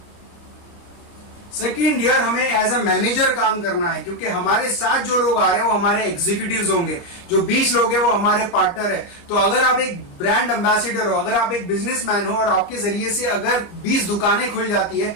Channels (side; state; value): right; late; 29 ms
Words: सेकेंड ईयर हमें एज अ मैनेजर काम करना है, क्योंकि हमारे साथ जो लोग आ रहे हैं वो हमारे एग्जीक्यूटिव्स होंगे। जो 20 लोग हैं वो हमारे पार्टनर है। तो अगर आप एक ब्रांड एम्बेसडर हो, अगर आप एक बिजनेसमैन हो, और आपके जरिए से अगर 20 दुकानें खुल जाती है,